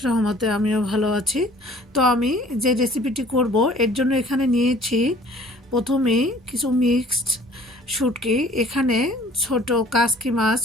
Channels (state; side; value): normal; both; correlation 0.53